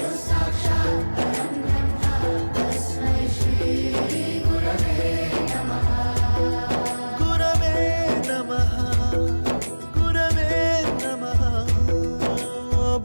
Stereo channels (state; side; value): inverted; both; correlation -1.00